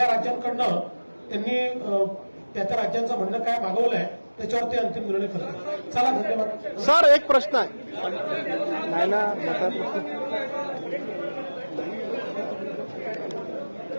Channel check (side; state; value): both; inverted; correlation -1.00